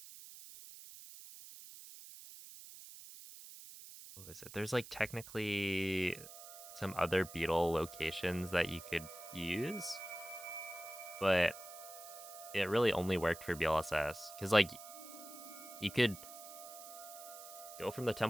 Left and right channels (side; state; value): right; noise; hiss, 14 dB below the sound